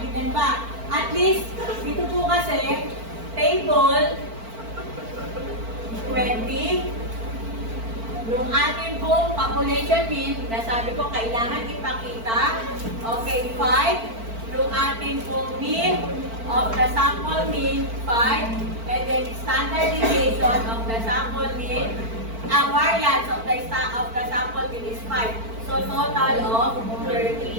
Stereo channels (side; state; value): left; late; 4.5 ms